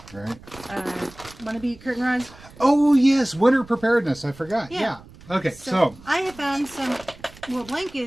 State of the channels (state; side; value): noise; right; rumble, 21 dB below the sound